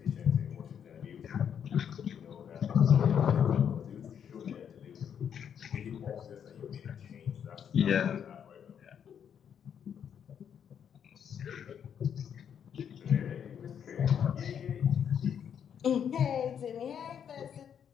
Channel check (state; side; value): quieter; right; 8.3 dB